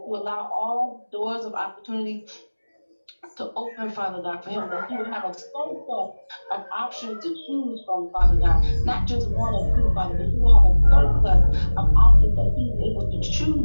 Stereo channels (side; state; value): both; inverted; correlation -1.00